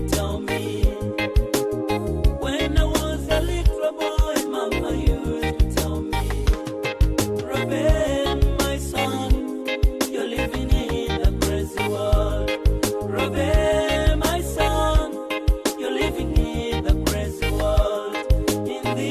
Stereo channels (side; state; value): both; identical; correlation 1.00